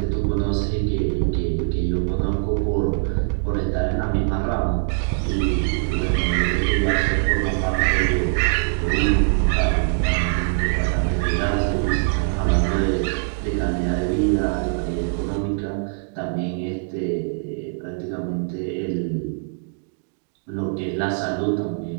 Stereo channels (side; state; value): left; silent; digital silence